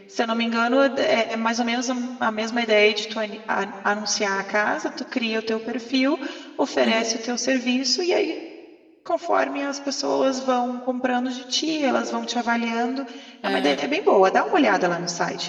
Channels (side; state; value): both; identical; correlation 1.00